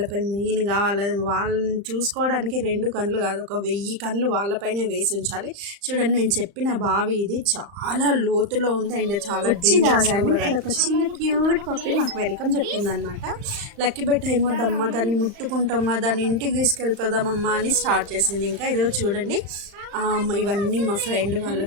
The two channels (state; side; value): late; left; 35 ms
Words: మెయిన్గా వాళ్ళని చూసుకోవడానికి 2 కళ్ళు కాదు, ఒక 1000 కళ్ళు వాళ్ళపైనే వేసి ఉంచాలి. చూడండి, నేను చెప్పిన బావి ఇది చాలా లోతులో ఉంది అండ్ చాలా ఒక చిన్న క్యూట్ పప్పి మాకు వెల్కమ్ చెప్పిందనమాట. లక్కీ బెట్ట ఏమో దమ్మ దాన్ని ముట్టుకుంటామా, దాన్ని ఇంటికి తీసుకెళ్ళిపోదామమ్మా అని స్టార్ట్ చేసింది. ఇంకా ఇదిగో చూడండి, ఇవన్నీ మా ఫ్రెండ్ వాళ్ళ